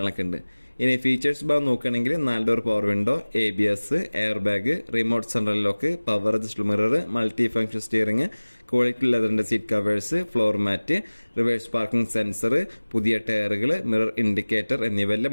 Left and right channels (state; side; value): inverted; both; correlation -1.00